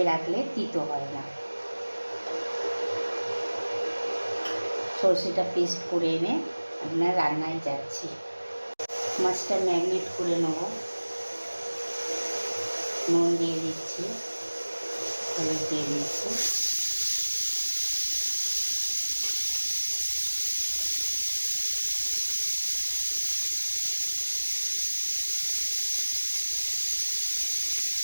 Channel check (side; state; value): both; inverted; correlation -1.00